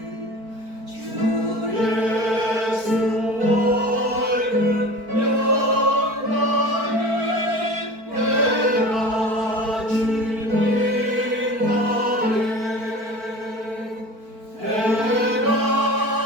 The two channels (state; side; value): late; left; 4.5 ms